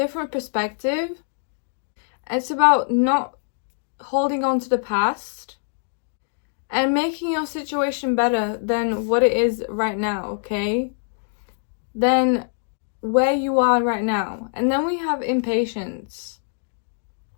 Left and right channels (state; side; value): silent; right; digital silence